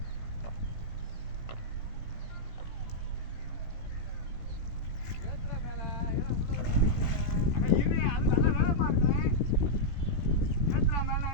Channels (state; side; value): late; right; 17 ms